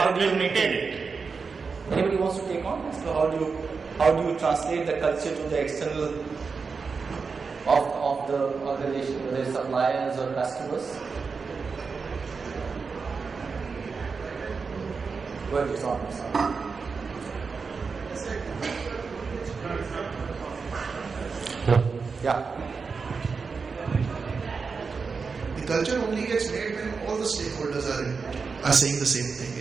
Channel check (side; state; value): left; quieter; 5.0 dB